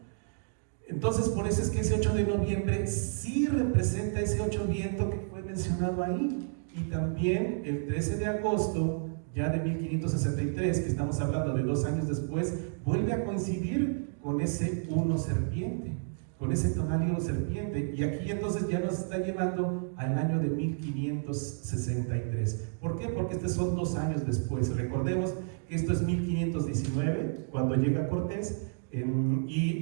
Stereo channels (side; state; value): left; silent; digital silence